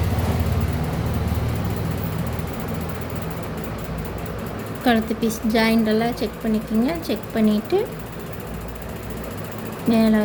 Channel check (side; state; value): both; identical; correlation 1.00